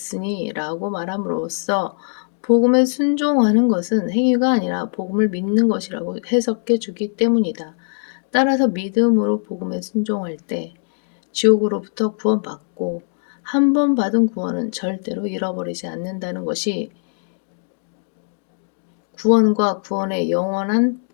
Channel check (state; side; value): silent; right; digital silence